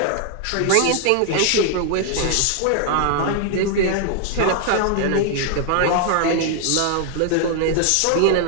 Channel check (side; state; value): both; different; correlation 0.00